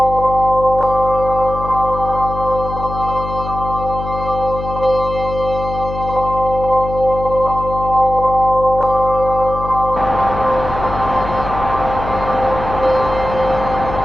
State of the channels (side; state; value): left; noise; hum, 8 dB below the sound